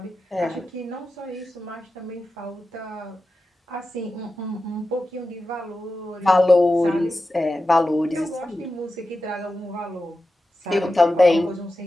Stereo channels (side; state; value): both; normal; correlation 0.92